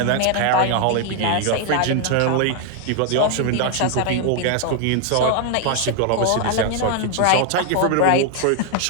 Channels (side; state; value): both; different; correlation 0.00